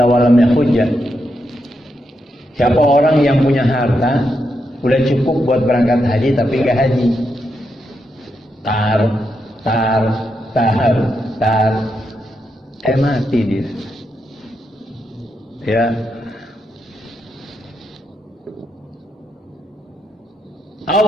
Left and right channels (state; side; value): normal; both; correlation 0.83